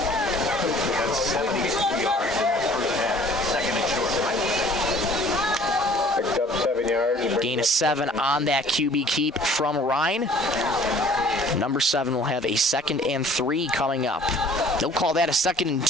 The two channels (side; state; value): both; normal; correlation 0.53